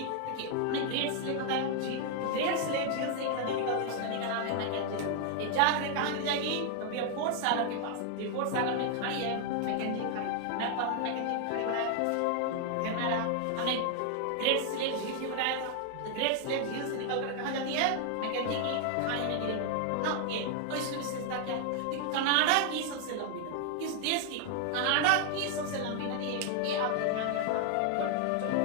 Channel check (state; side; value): different; both; correlation 0.00